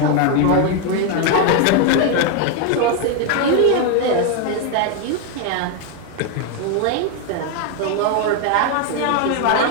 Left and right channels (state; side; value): different; both; correlation 0.01